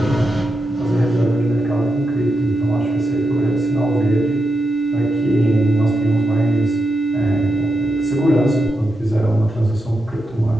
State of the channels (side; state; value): both; normal; correlation 0.86